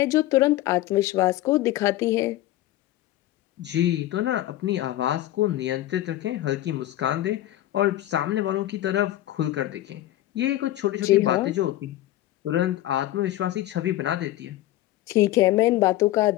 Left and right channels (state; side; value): quieter; right; 15.0 dB